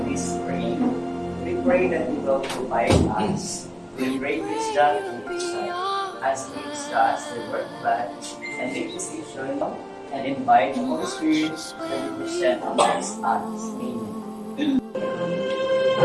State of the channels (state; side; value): identical; both; correlation 1.00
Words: this praying. We pray that you will provide us with great wisdom and insight as we discuss the word of God and make decisions and invite the Holy Spirit that you present amongst us. Amen.